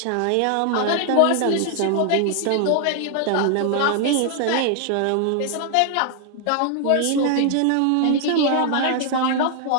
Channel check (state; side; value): different; both; correlation 0.00